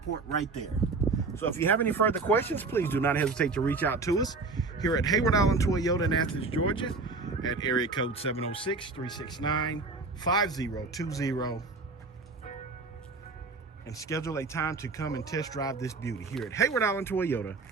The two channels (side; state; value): left; quieter; 3.9 dB